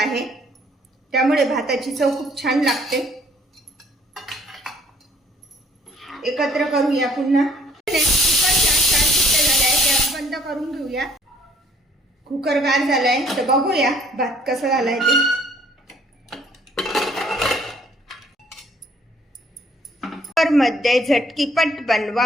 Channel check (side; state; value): both; normal; correlation 0.61